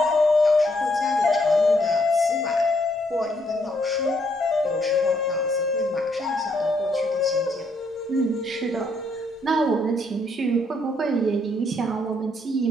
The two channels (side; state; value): both; normal; correlation 0.72